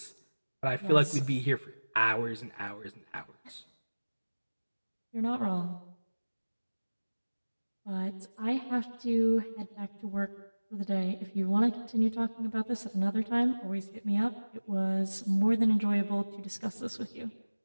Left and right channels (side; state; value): both; inverted; correlation -1.00